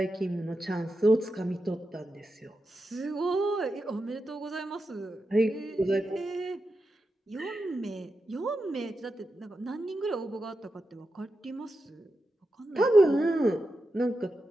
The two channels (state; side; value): normal; both; correlation 0.89